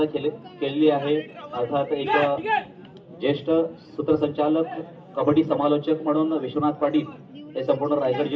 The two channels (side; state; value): both; identical; correlation 1.00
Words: केलेली आहे. अर्थात एक ज्येष्ठ सूत्रसंचालक, कबड्डी समालोचक म्हणून विश्वनाथ पाटील हे संपूर्ण रायगड